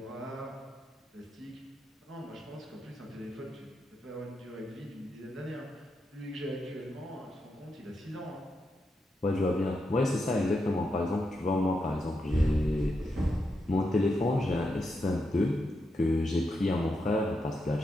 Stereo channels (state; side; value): normal; both; correlation 0.85